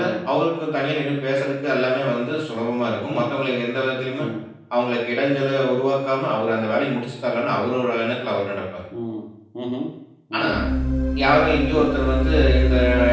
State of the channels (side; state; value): both; identical; correlation 1.00